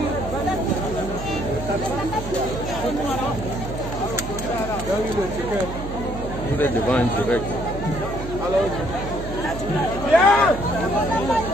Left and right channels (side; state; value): right; noise; hum, 8 dB below the sound